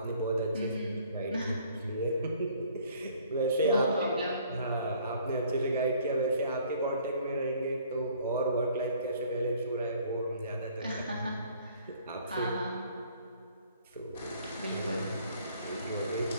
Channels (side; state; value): both; inverted; correlation -0.58